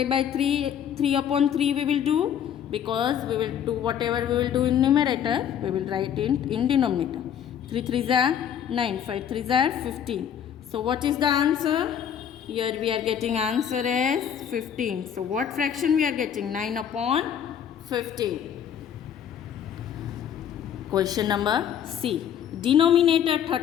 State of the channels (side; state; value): right; quieter; 9.0 dB